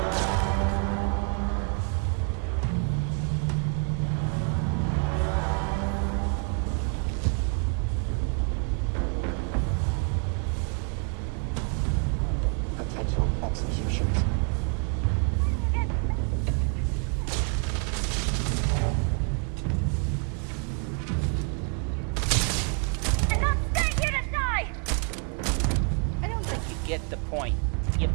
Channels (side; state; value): left; quieter; 40.0 dB